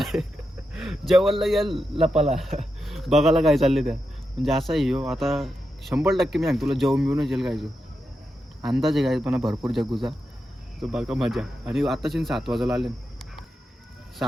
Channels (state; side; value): normal; both; correlation 0.87